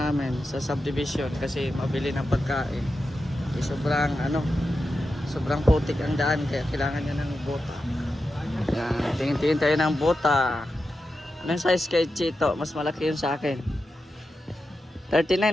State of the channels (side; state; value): both; normal; correlation 0.90